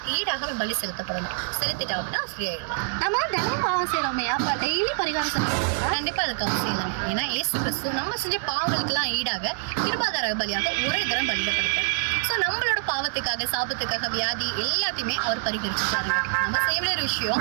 ஈடாக அவன் பலி செலுத்தப்படணும். செலுத்திட்டா அப்படின்னா ஃப்ரீ ஆயிடலாம். நம்ம தினமும் பாவம் செய்யறோமே, அப்ப டெய்லி பரிகாரம் செலுத்துறோம். கண்டிப்பா அதுக்கு அவசியம் இல்லை. ஏன்னா இயேசு கிறிஸ்து நம்ம செஞ்ச பாவங்களுக்கெல்லாம் ஈடாக கிருபாதார பலியாக ஒரே தரம் பலியிடப்படுகிறார். ஸோ நம்மளோட பாவத்துக்காக, சாபத்துக்காக, வியாதி எல்லாத்தையுமே அவர் பரிகரிச்சுட்டாரு. நம்ம செய்ய வேண்டிய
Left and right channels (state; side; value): silent; left; digital silence